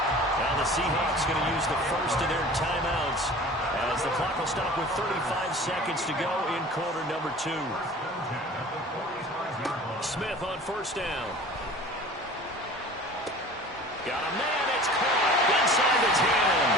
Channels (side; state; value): both; normal; correlation 0.42